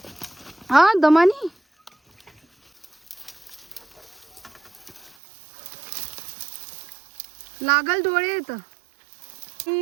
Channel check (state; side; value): drops out; left; at 5.2 s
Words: हा दमानी लागल डोळे येत.